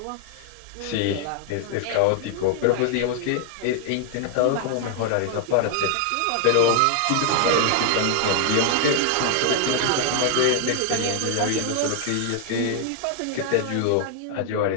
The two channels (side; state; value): both; different; correlation 0.00